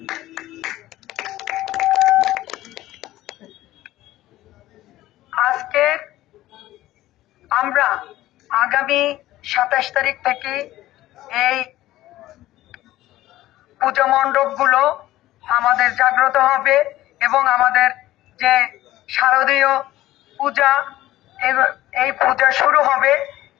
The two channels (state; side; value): quieter; right; 15.5 dB